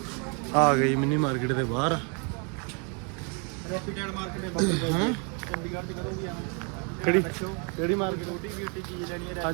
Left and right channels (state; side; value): quieter; left; 36.3 dB